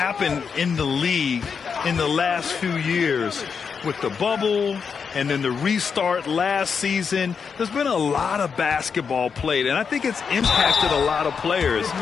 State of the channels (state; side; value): quieter; right; 6.1 dB